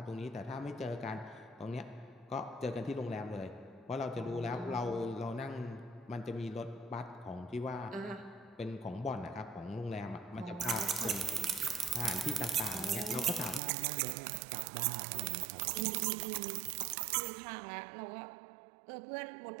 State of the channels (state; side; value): drops out; left; at 13.6 s